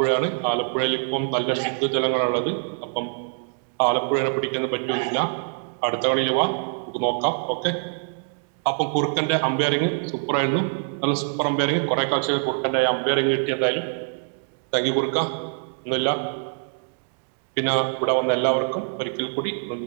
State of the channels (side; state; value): left; silent; digital silence